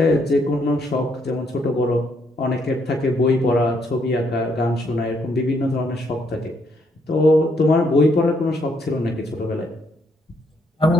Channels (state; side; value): normal; both; correlation 0.72